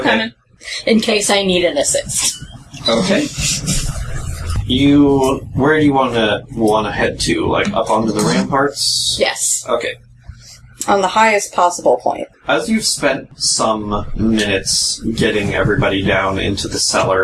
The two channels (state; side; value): identical; both; correlation 1.00